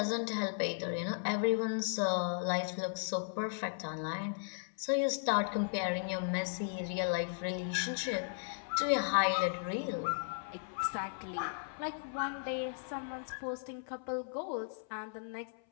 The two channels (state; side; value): silent; right; 54 dB below the other